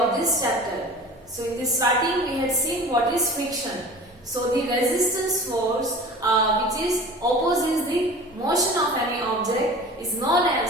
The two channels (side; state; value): both; normal; correlation 0.39